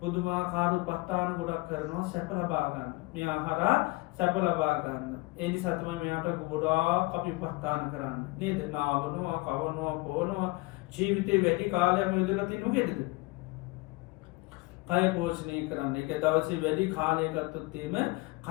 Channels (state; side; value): quieter; right; 23.5 dB